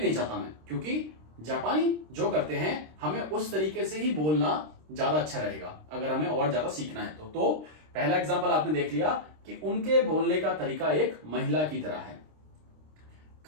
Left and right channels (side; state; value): left; late; 26 ms